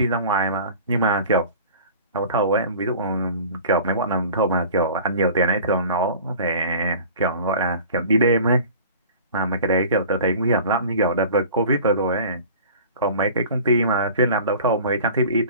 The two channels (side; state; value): both; inverted; correlation -0.42